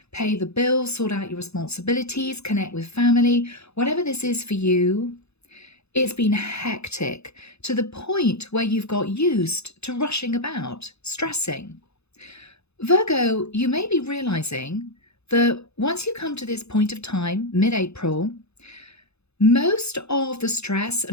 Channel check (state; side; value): late; right; 0.79 ms